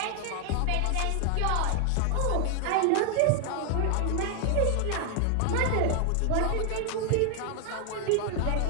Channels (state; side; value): different; both; correlation 0.00